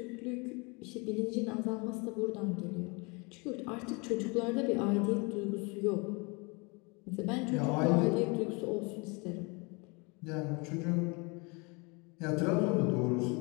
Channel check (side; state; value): right; quieter; 29.5 dB